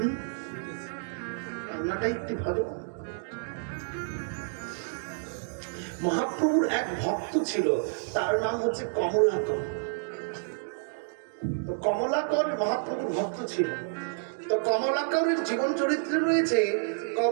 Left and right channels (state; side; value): silent; left; digital silence